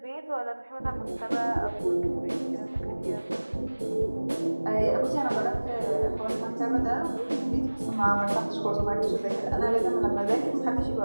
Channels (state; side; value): inverted; both; correlation -1.00